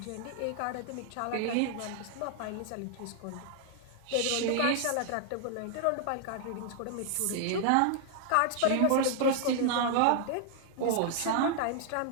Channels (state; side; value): different; both; correlation 0.00